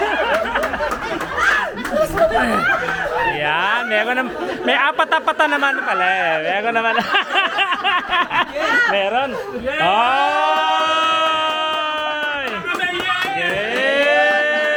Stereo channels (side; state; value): both; identical; correlation 1.00